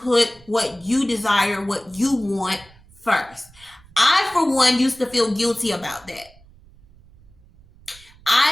what you desire, what you want first. I, for one, used to feel guilty about that.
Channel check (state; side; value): noise; right; rumble, 26 dB below the sound